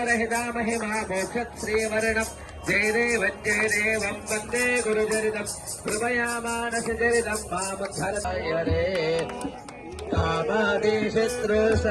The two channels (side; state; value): both; identical; correlation 1.00